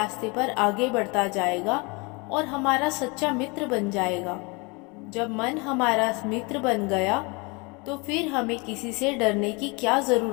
पर आगे बढ़ता जाएगा और हमारा सच्चा मित्र बन जाएगा। जब मन हमारा मित्र बन गया तो फिर हमें किसी से डरने की क्या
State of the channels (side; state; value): right; quieter; 28.8 dB